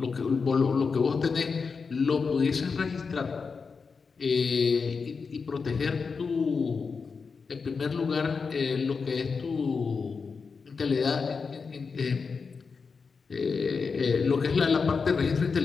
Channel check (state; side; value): quieter; right; 5.1 dB